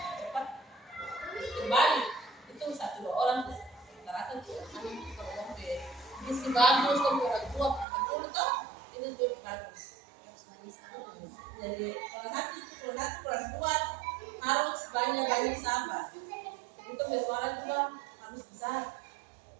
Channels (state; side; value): drops out; left; at 7.9 s